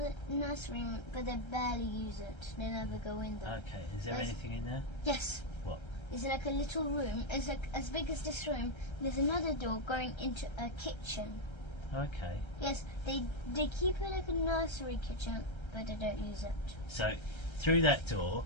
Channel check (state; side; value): late; right; 1.3 ms